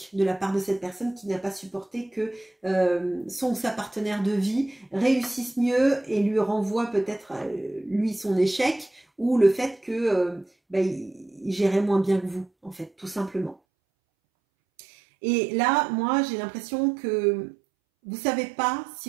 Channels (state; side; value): drops out; left; at 13.6 s